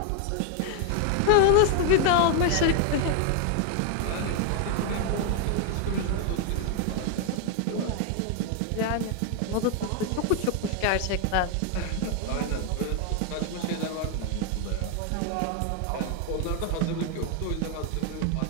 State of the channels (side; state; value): both; different; correlation 0.00